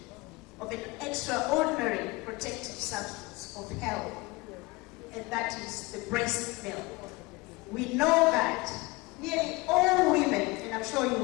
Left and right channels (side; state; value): right; quieter; 23.5 dB